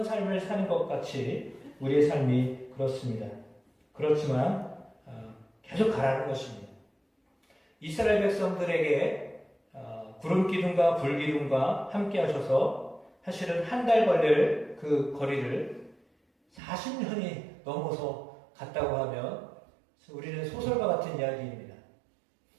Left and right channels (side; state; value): left; drops out; at 16.6 s